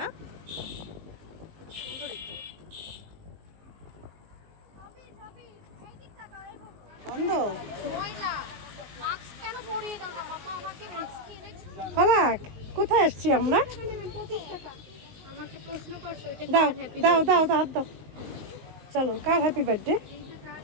সুন্দরই তো। বন্ধ ফালাক, কোথায় আসছি আমরা? দাও দাও দাও দাও, হাত দাও। চলো, কার হ্যাপি বার্থডে?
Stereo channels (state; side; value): late; left; 19 ms